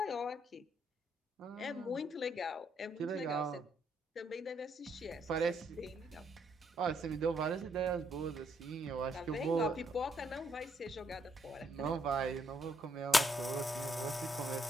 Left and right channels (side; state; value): both; normal; correlation 0.73